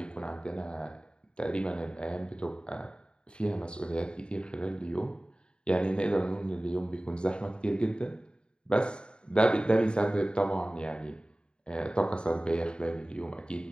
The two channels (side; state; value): right; late; 0.051 ms